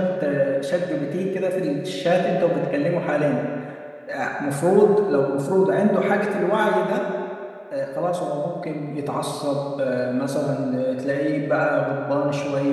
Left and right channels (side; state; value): both; identical; correlation 1.00